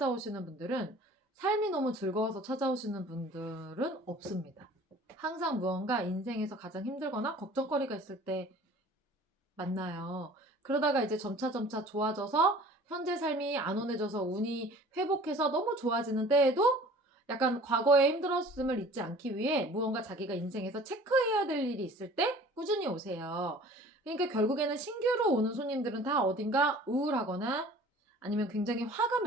분들은 삶이 너무 즐거워서 찾아오시는 분들은 없습니다. 항상 무언가 인생에서 가장 힘들거나 걱정거리가 있을 때 만나요. 그러다가 이제 점차 좋아져서 현재 삶이 안온해져서 운이 회복해서 너무 좋아지는 때에도 약간 과거의 힘들었음을 잊지 않기 위해 무언가 자기가 인생에서 체크해야 될 일이 있을 때 꾸준히 오세요. 그러니까 결국에는 신규로 오는 손님들은 다 어딘가 우울하거나 아니면 굉장히 화가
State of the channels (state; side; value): normal; both; correlation 0.47